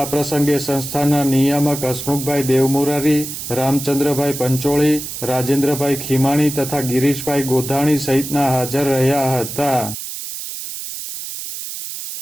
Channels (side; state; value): right; noise; hiss, 8 dB below the sound